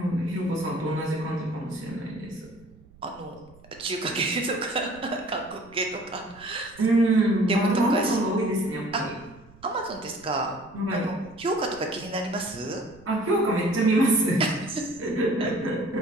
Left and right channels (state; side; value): noise; right; rumble, 25 dB below the sound